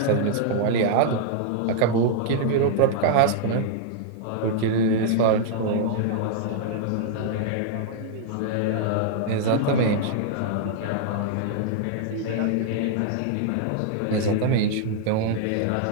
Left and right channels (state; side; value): different; both; correlation -0.01